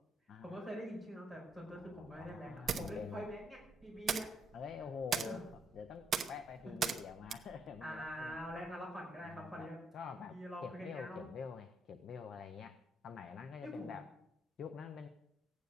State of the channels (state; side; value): normal; both; correlation 0.73